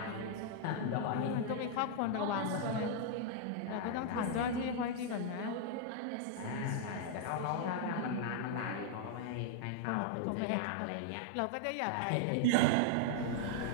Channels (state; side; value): different; both; correlation 0.00